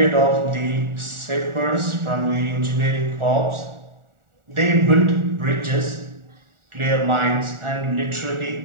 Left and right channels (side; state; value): left; late; 1.4 ms